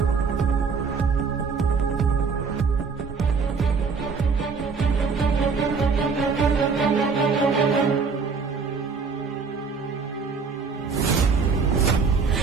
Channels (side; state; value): left; quieter; 5.1 dB